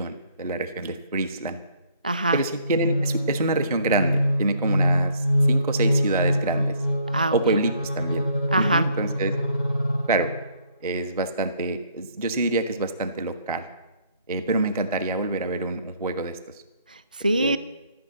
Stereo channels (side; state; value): both; inverted; correlation -0.64